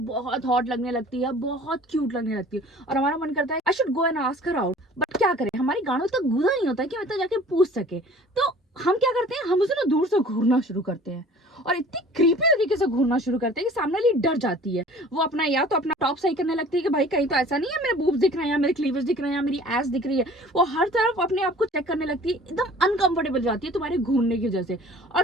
बहुत हॉट लगने लगती है, बहुत क्यूट लगने लगती है और हमारा मन करता है I should go and ask her out. But क्या करें, हमारी गाड़ों तक घूरा नहीं होता है कि मतलब जाके पूछ सके। तो हम क्या करते हैं, हम उसे ना दूर से घूरना शुरू करते हैं और इतनी क्रीपी तरीके से घूरना शुरू करते हैं कि सामने वाली डर जाती है। वो अपना या तो अपना टॉप सही करने लगती है कि भाई कहीं तो ऐसा नहीं है मेरे बूब्स दिख रहे हैं या मेरे क्लीवेज दिख रहे हैं या मेरी एस दिख रही है। वो हर तरफ अपने आप को चेक करने लगती है, एकदम अनकंफर्टेबल जाती है तुम्हारे घूरने की वजह से। और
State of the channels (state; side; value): normal; both; correlation 0.48